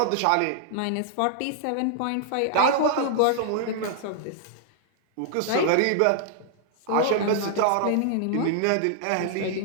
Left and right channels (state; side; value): different; both; correlation -0.01